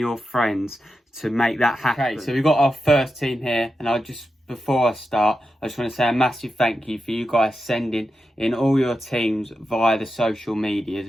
friends to make that happen. Okay, so we've got our first team here, and before I start, I just want to say a massive thank you for you guys sending in all your teams via the social medias,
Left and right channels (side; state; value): both; normal; correlation 0.89